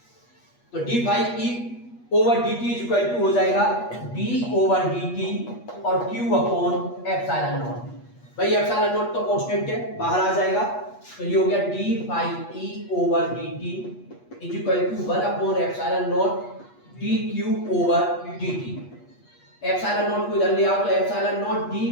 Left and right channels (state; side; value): late; right; 8.4 ms